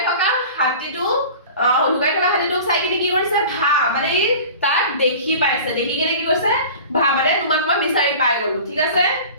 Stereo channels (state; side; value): inverted; both; correlation -0.39